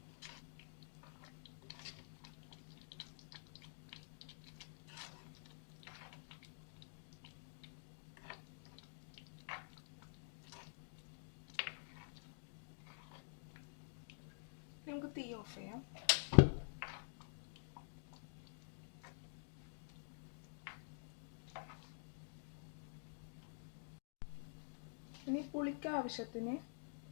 നമുക്ക് തീ ഓഫ് ചെയ്യാം. ഇനി പുളിക്ക് ആവശ്യത്തിന്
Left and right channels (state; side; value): silent; right; digital silence